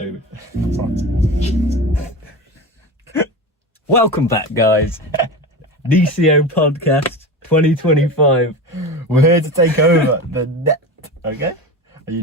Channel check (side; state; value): both; normal; correlation 0.26